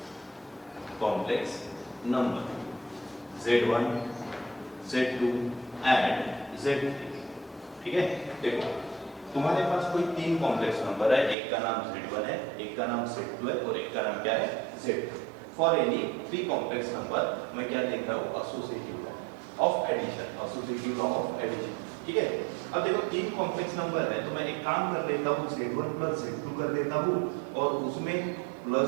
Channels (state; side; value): drops out; left; at 11.4 s